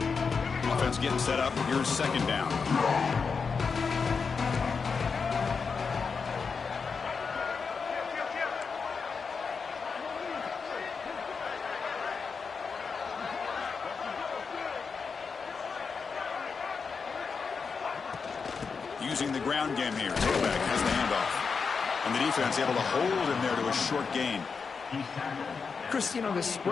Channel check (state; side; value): quieter; right; 5.3 dB